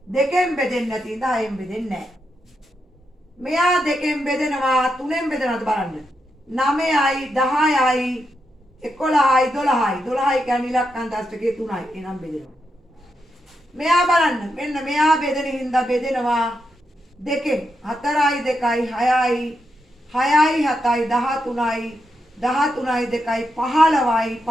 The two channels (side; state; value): both; normal; correlation 0.84